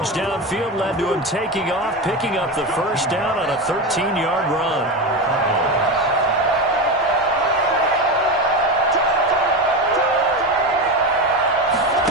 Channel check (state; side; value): normal; both; correlation 0.19